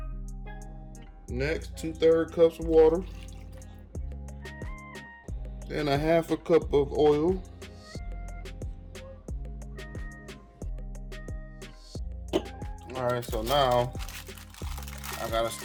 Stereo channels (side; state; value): both; identical; correlation 1.00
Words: Next, 2/3 cups of water. Then 1/2 cup of oil. Alright, so now I gotta